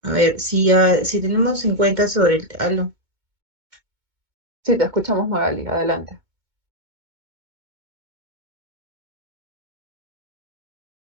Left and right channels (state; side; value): late; left; 2.2 ms